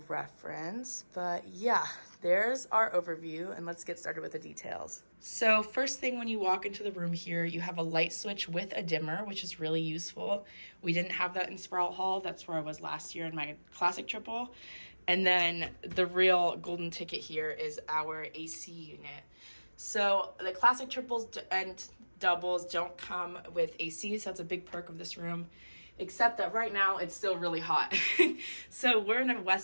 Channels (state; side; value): inverted; both; correlation -1.00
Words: But yeah, there's our overview, and let's get started with the details. So first thing, when you walk into the room here, you have a light switch with a dimmer, which is really useful. We didn't have that in Sprout Hall. That's where I was last year in my classic triple. And then the real golden ticket here is our AC unit. So the classic triples and doubles don't come with AC, so that's a big perk of this room. Except that right now it's still really hot. So we're in a